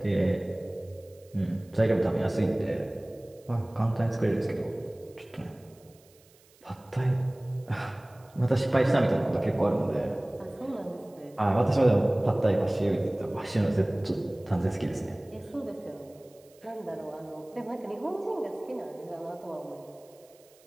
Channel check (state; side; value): noise; right; hiss, 29 dB below the sound